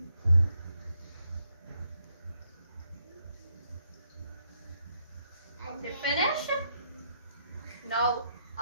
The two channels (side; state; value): both; inverted; correlation -0.76